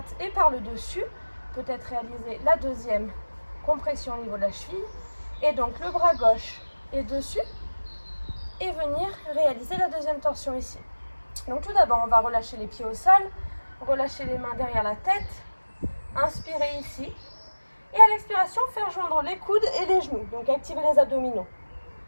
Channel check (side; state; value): both; inverted; correlation -1.00